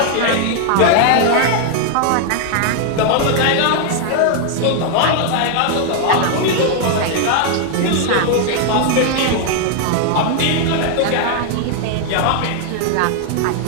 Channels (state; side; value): different; both; correlation 0.00